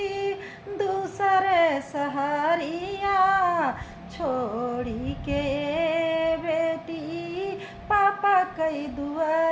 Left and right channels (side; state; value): both; identical; correlation 1.00